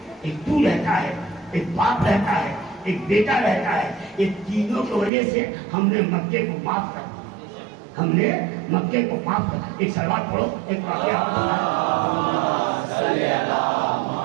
ایک تو رہتا ہے, ایک باپ رہتا ہے, ایک بیٹا رہتا ہے. یہ تینوں کی وجہ سے ہم نے مکے کو معاف کر دیا. ہم نے مکے کو معاف کر. ایک سلوات پڑھو, ایک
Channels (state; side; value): drops out; left; at 5.1 s